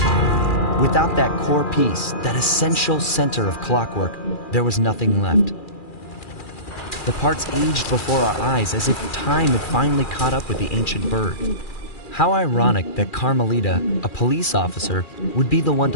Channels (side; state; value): right; late; 2.4 ms